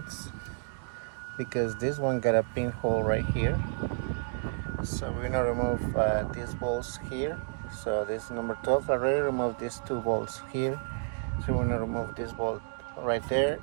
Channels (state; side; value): silent; left; digital silence